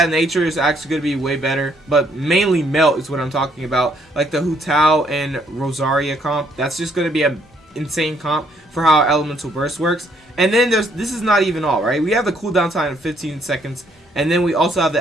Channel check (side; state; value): both; normal; correlation 0.68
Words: nature is actually going to be way better. But mainly Melt is what I'm talking about, like the Hu Tao and Rosaria comp. That's just going to be an insane comp for how Elemental Burst works. And then this is not even all, right? We have the cooldown time of 15 seconds, and then we also have the